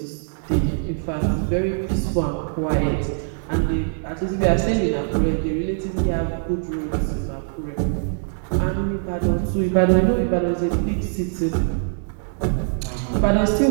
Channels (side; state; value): left; silent; digital silence